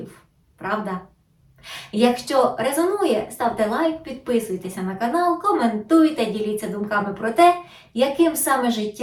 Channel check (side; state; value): both; identical; correlation 1.00